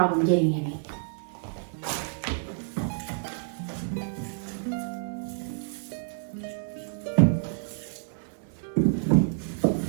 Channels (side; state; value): left; silent; digital silence